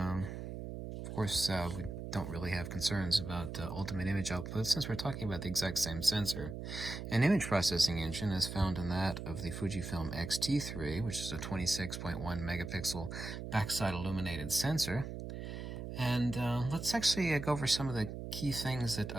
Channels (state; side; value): noise; right; hum, 7 dB below the sound